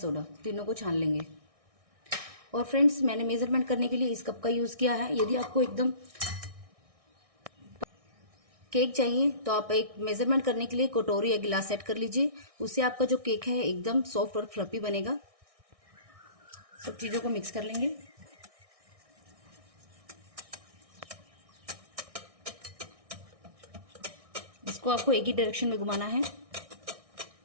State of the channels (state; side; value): late; left; 1.6 ms